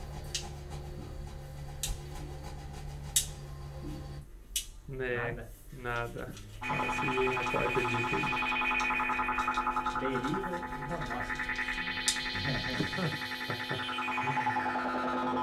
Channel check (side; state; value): both; identical; correlation 1.00